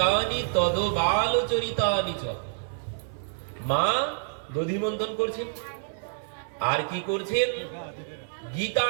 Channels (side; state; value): left; silent; digital silence